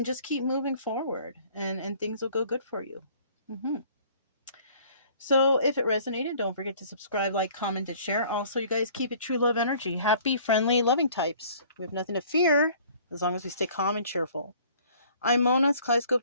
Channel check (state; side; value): inverted; both; correlation -0.54